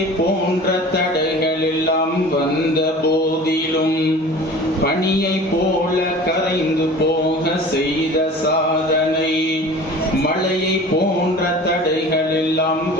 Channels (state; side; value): normal; both; correlation 0.41